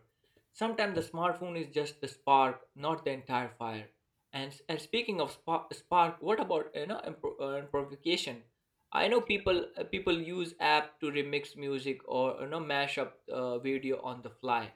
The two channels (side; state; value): both; identical; correlation 1.00